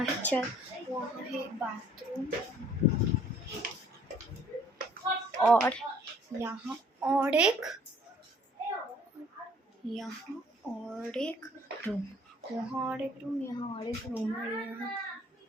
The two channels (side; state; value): both; normal; correlation 0.57